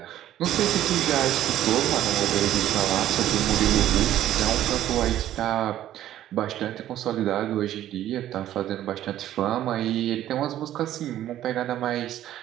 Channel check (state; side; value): quieter; left; 12.5 dB